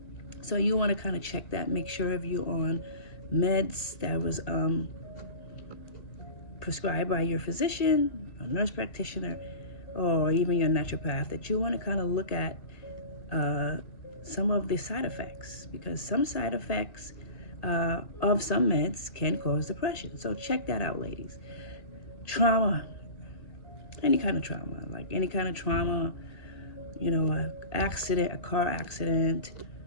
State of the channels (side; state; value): right; late; 1.9 ms